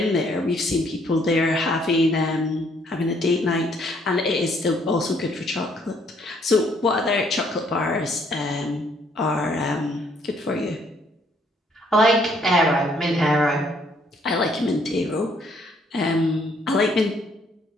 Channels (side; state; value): both; normal; correlation 0.66